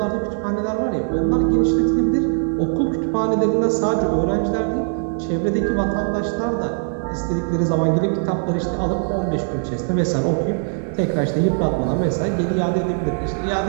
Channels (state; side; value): silent; left; 62 dB below the other